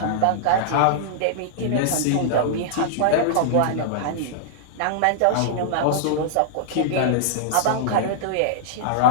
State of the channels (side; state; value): both; different; correlation -0.02